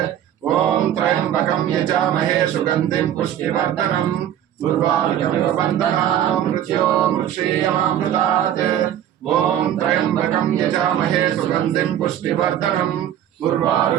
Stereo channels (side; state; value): left; quieter; 10.9 dB